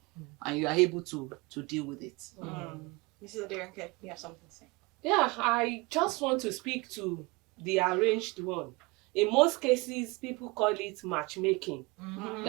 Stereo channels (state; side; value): quieter; left; 25.2 dB